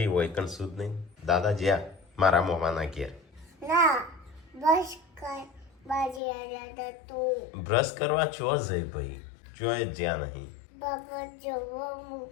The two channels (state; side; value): drops out; right; at 6.2 s